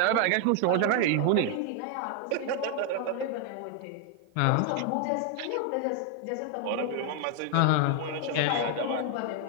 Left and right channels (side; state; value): both; different; correlation 0.00